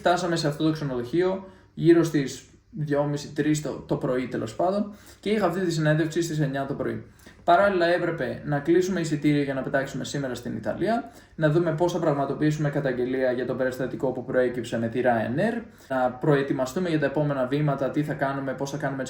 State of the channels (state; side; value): identical; both; correlation 1.00